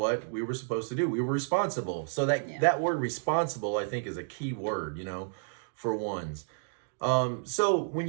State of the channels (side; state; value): left; silent; digital silence